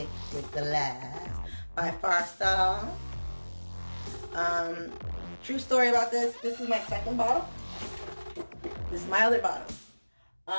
glass by Farsal. True story about this. This is my second bottle. This is my other bottle.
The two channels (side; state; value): both; inverted; correlation -1.00